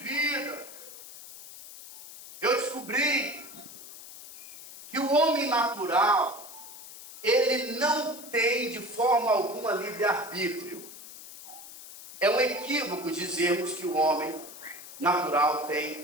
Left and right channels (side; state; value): left; noise; hiss, 15 dB below the sound